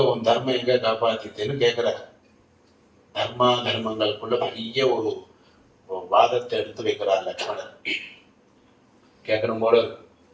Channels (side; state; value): both; identical; correlation 1.00